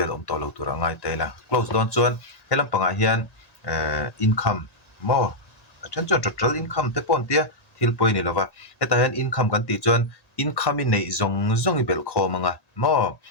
om to lo tur angai te la close don chuan helam panga hian income mo achan chu total income te pon tia thil poi ni lova heta hian income kan ti chuan income in nei zong i bel khomanga mo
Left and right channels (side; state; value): right; late; 1.9 ms